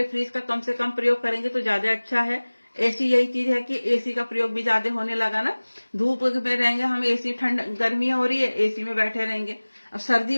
फ्रिज का कम से कम प्रयोग करेंगे तो ज्यादा अच्छा है। एसी यही चीज है कि एसी का प्रयोग भी ज्यादा होने लगा ना, धूप में रहेंगे हम एसी, ठंड गर्मी हो रही है एसी में बैठे रहेंगे, अब सर्दी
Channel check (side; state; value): both; inverted; correlation -1.00